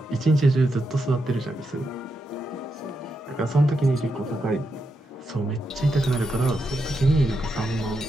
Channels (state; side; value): normal; both; correlation 0.84